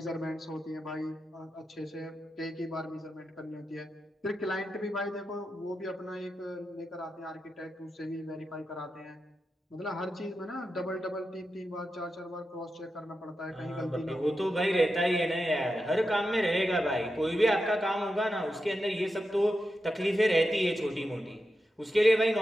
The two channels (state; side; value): normal; both; correlation 0.89